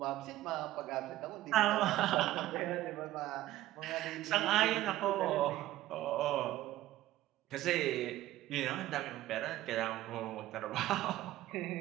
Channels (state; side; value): quieter; left; 15.2 dB